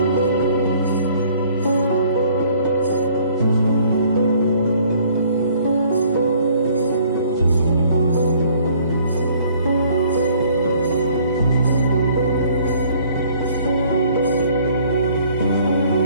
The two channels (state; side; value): inverted; both; correlation -0.58